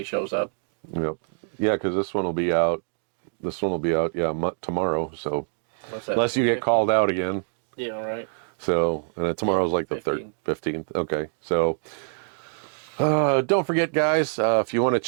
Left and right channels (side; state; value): left; silent; digital silence